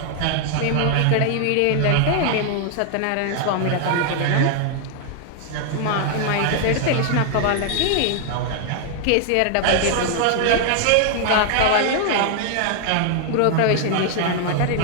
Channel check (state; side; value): different; both; correlation 0.00